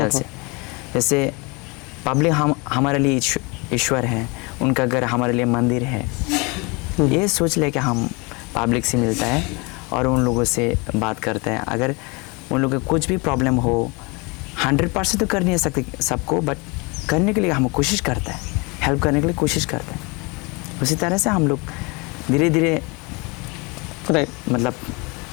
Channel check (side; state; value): right; quieter; 28.6 dB